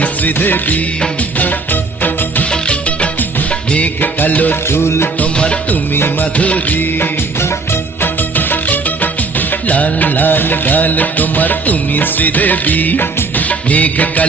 শ্রীদেবী, মেঘ কালো চুল তোমার তুমি মাধুরী। লাল লাল গাল তোমার তুমি শ্রীদেবী, মেঘ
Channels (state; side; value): quieter; left; 4.0 dB